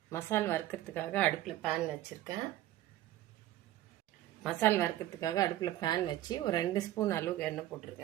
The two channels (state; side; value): quieter; left; 14.1 dB